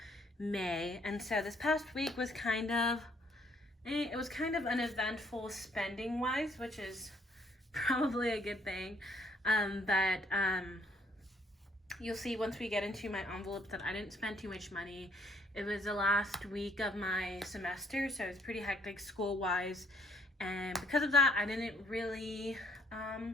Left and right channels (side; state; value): both; normal; correlation 0.65